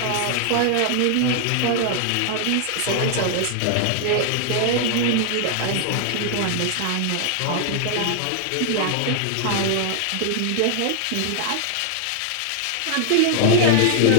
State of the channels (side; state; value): both; different; correlation 0.00